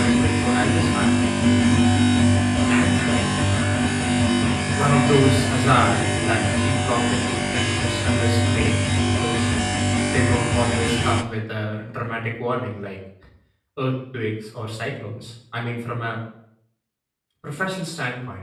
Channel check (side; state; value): both; identical; correlation 1.00